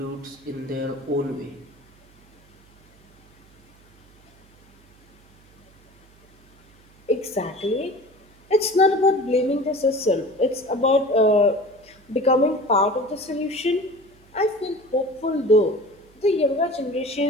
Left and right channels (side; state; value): right; noise; hum, 29 dB below the sound